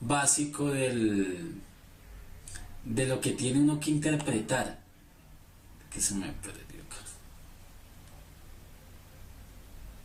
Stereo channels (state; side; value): identical; both; correlation 1.00